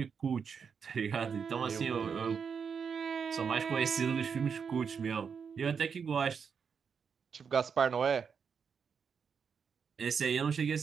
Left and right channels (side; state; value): left; quieter; 6.4 dB